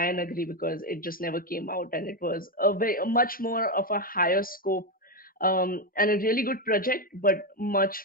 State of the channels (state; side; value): normal; both; correlation 0.09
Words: Nagri, because it just never came out, and it was a much more of a higher scope, and a really good project, but much